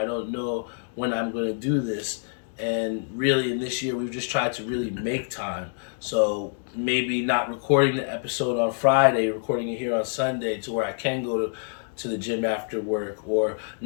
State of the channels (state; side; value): silent; right; digital silence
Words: don't know when I'm going to do this. And really, in this year, we've just tried to really make time. So maybe not recording the episode on Friday, recording it here on Sunday, to where I can go to the gym after work, or